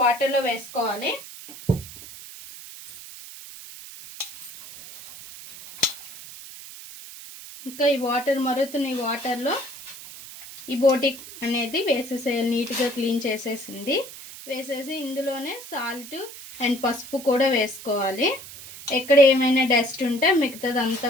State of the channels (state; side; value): noise; right; hiss, 15 dB below the sound